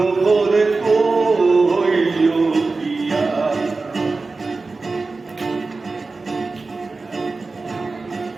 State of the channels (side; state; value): left; quieter; 3.8 dB